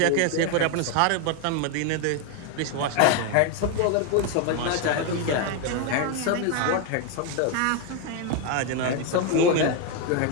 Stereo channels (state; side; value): different; both; correlation 0.01